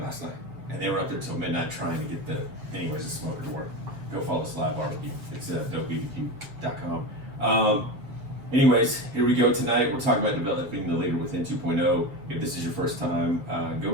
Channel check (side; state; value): left; late; 7.3 ms